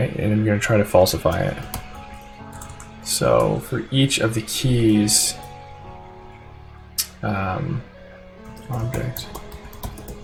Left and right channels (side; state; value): both; identical; correlation 1.00